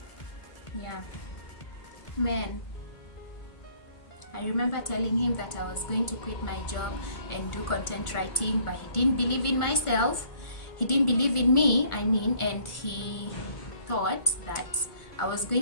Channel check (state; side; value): late; right; 1.4 ms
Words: Yeah, man. I remember telling him that I was going to quit my job and do content writing, but he didn't believe in myself. He didn't believe in me, I mean, and he thought that I was